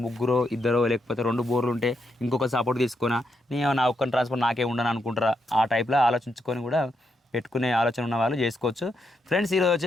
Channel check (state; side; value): normal; both; correlation 0.81